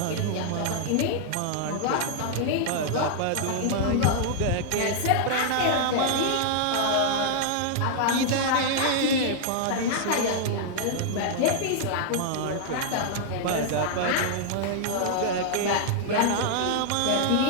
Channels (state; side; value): different; both; correlation -0.01